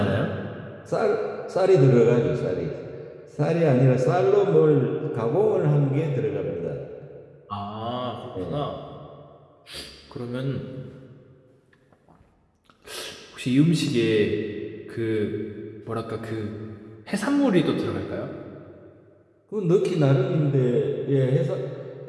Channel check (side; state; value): both; identical; correlation 1.00